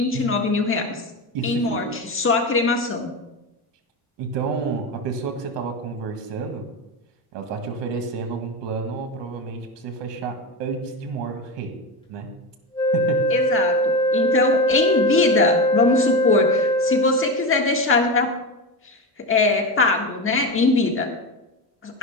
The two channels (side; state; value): both; normal; correlation 0.19